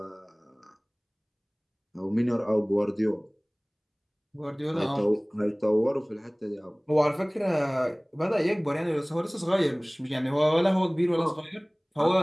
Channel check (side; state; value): both; identical; correlation 1.00